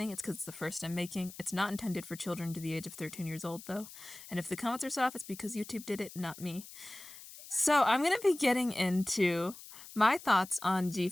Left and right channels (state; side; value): noise; left; hiss, 16 dB below the sound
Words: it's because it's the first I'm making. It's not intended for children to the age of 13 years old though. And if the comments are soft, it's because YouTube did it, not me. So I'm going to be getting into my thoughts on